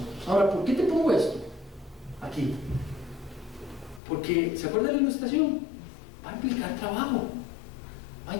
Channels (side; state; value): right; drops out; at 4.0 s